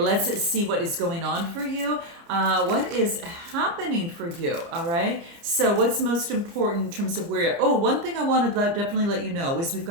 see what is going on for you. What is happening for you? All right. So what's most important in terms of where you're... Oh, one thing I want to definitely let you know is we've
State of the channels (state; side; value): late; left; 30 ms